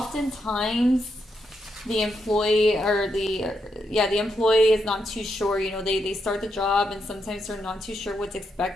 the employee the employee is not too sure. They start the job and sometimes they're not too sure what's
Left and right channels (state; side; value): normal; both; correlation 0.82